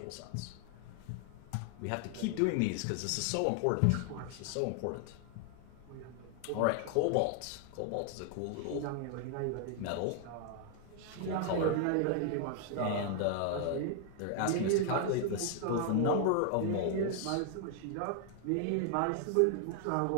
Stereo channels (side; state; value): both; different; correlation 0.00